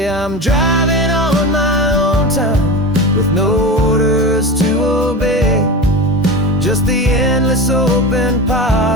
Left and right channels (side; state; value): both; normal; correlation 0.27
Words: I'm driving on my own time with no orders to obey, just the endless open